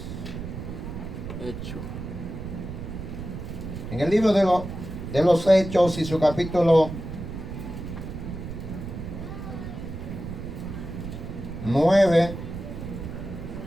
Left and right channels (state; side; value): noise; right; rumble, 8 dB below the sound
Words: Hecho. En el libro de los Hechos y su capítulo 9.